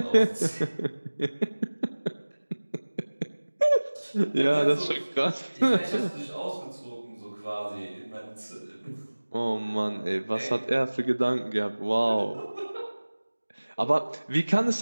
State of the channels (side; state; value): both; inverted; correlation -1.00